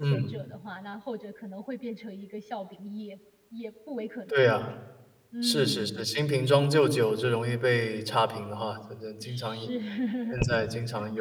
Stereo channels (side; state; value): both; identical; correlation 1.00